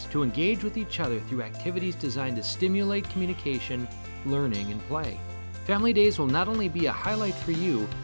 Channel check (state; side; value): inverted; both; correlation -1.00